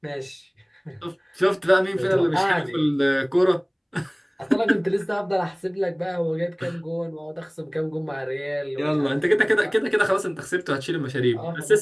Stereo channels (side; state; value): both; identical; correlation 1.00